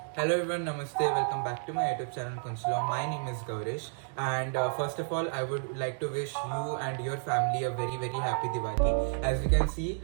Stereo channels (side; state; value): left; silent; 57 dB below the other